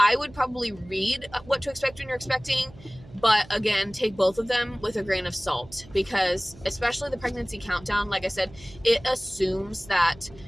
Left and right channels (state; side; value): noise; right; hum, 21 dB below the sound